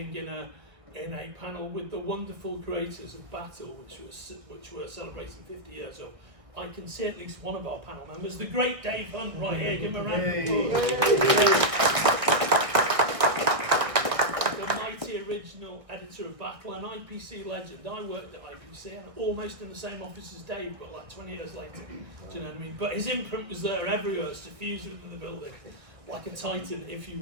in a panel with the wonderful creators of Battle, which were celebrating 50 years of. I can see at least one of our panel members, the great Dave Hunt, right here. Give him a round of applause. The mighty original editor of Battle, an IPC legend. I worked at IPC, and almost in the same office as Dave, but like 20 years later. Do you know what I mean? But his imprint was there everywhere, suffused in the building, like a titan, if you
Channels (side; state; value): left; late; 1.6 ms